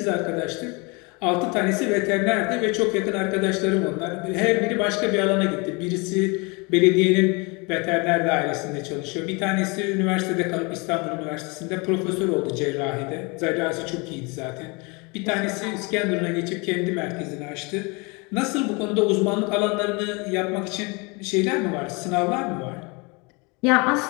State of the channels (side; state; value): right; quieter; 29.1 dB